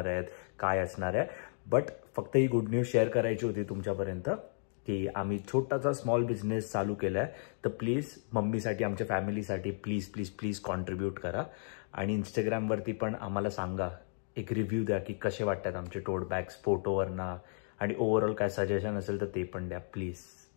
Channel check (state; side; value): silent; right; digital silence